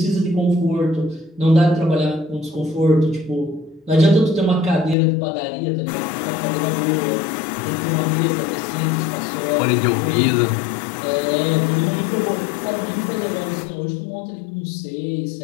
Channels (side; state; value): right; drops out; at 5.0 s